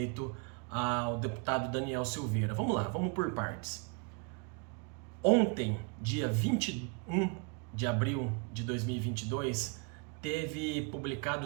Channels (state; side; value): quieter; left; 33.9 dB